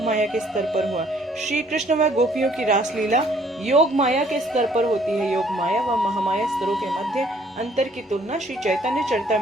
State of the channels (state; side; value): normal; both; correlation 0.62